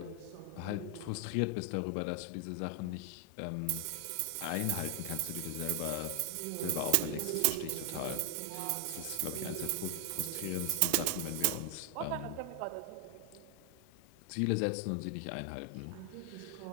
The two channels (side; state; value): both; different; correlation 0.00